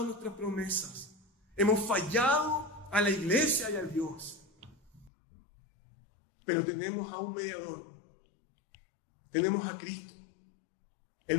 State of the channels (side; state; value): right; drops out; at 5.1 s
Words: a nuestras promesas. Hemos fallado a la iglesia y a Dios. Pero tenemos a un mediador. Tenemos a Cristo,